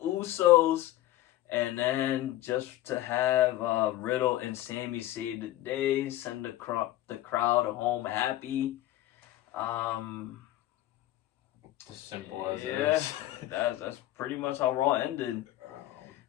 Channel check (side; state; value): right; quieter; 14.8 dB